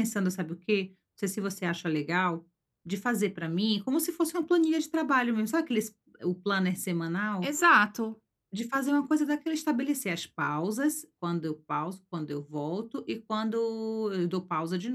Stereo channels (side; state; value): both; identical; correlation 1.00